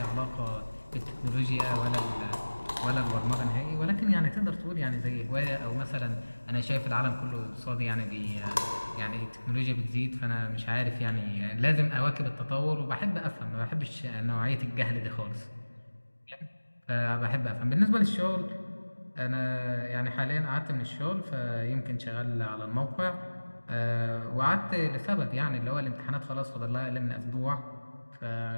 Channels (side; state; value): both; inverted; correlation -1.00